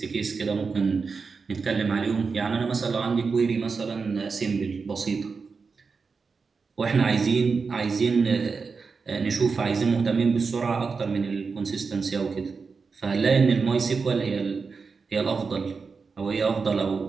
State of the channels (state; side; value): quieter; left; 4.9 dB